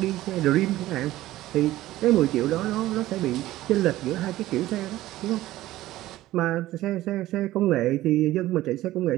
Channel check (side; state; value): left; quieter; 15.7 dB